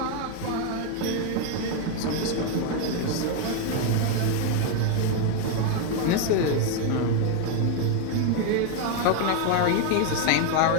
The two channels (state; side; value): different; both; correlation 0.01